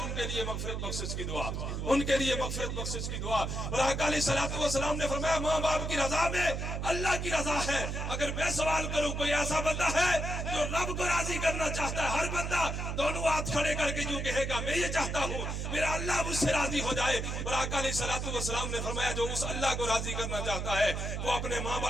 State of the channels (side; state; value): right; noise; hum, 3 dB below the sound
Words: کے لیے مغفرت بخشش کی دعا، ان کے لیے مغفرت بخشش کی دعا۔ اور آقا علیہ السلام نے فرمایا ماں باپ کی رضا میں اللہ کی رضا ہے۔ اگر میں سوال کروں کوئی ایسا بندہ ہے جو رب کو راضی کرنا چاہتا ہے، ہر بندہ دونوں ہاتھ کھڑے کر کے یوں کہے گا میں یہ چاہتا ہوں میرا اللہ مجھ سے راضی ہو جائے۔ اور آقا علیہ السلام نے فرمایا جو اس اللہ کو راضی کرنا چاہتا ہے وہ اپنے ماں